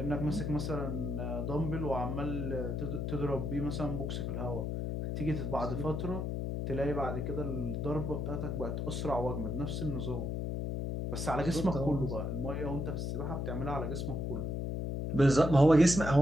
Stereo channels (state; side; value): noise; left; hum, 2 dB below the sound